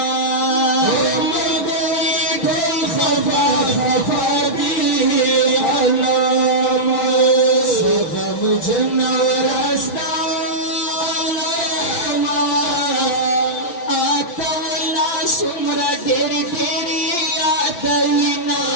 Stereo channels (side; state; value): right; late; 5.8 ms